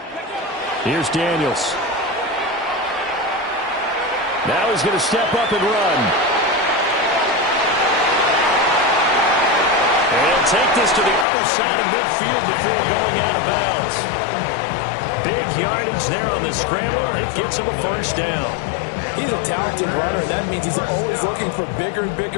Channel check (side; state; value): right; drops out; at 11.2 s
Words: Here's Daniels. Now he's going to step up and run. And he'll take this to the other side of midfield before going out of bounds. Big yardage there on the scramble. It gets him a first down. He's a talented runner, and that means he's always looking for bigger and